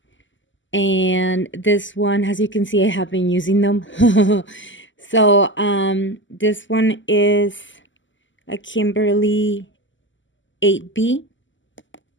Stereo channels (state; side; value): late; right; 0.55 ms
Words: And this one, as you can see, I have been using them. So this one is a Kimberly 8B.